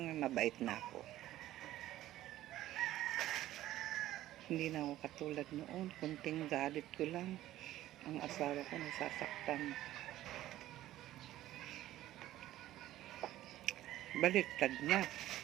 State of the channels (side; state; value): left; quieter; 14.3 dB